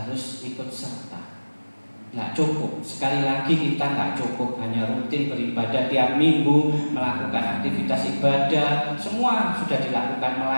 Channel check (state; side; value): inverted; both; correlation -1.00